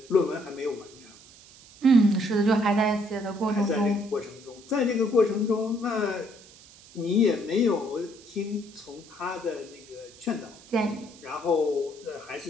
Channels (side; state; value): right; noise; hiss, 22 dB below the sound